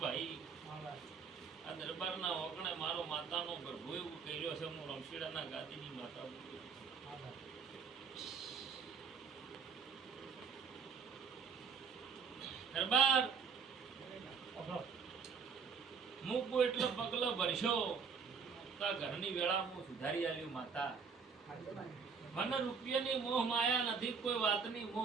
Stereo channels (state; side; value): quieter; left; 5.8 dB